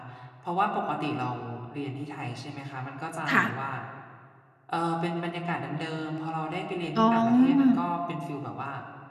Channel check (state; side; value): identical; both; correlation 1.00